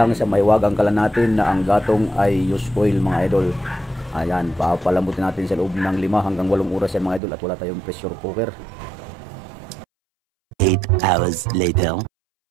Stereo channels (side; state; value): left; drops out; at 7.2 s